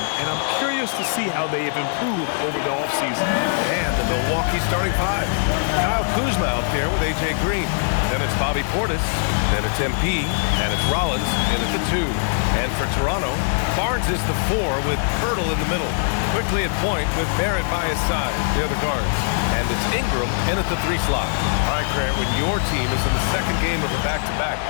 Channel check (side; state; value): right; silent; digital silence